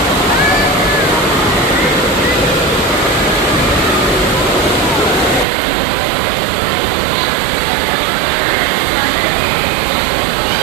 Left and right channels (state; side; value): drops out; left; at 5.5 s